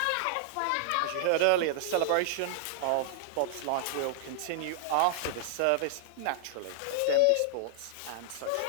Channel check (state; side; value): different; both; correlation -0.01